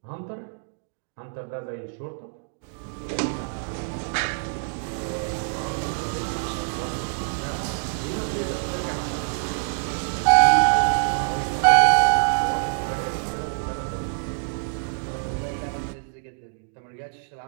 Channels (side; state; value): left; silent; digital silence